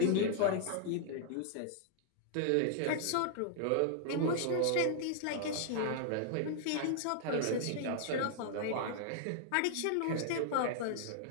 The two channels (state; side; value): different; both; correlation -0.01